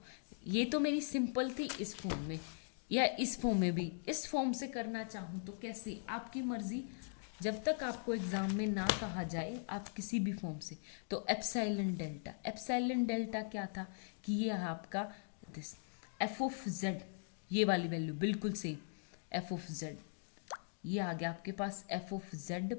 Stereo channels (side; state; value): right; silent; digital silence